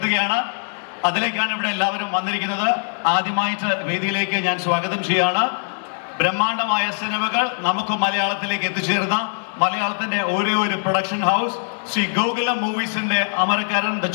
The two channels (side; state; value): right; silent; digital silence